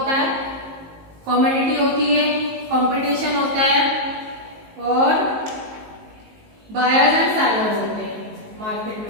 है, कमोडिटी होती है, कंपटीशन होता है, और बायर्स एंड सेलर्स होते हैं मार्केट में।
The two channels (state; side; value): late; left; 19 ms